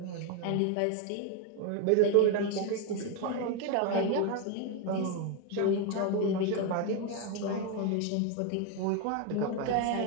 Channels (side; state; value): both; different; correlation 0.01